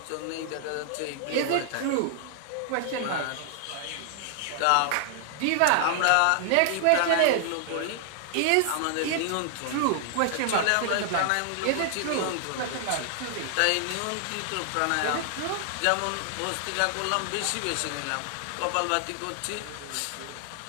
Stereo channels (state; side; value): different; both; correlation 0.00